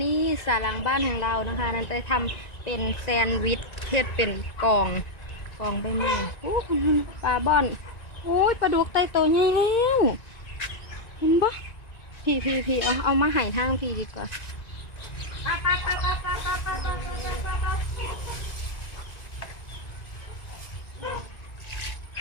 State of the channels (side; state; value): right; late; 1.9 ms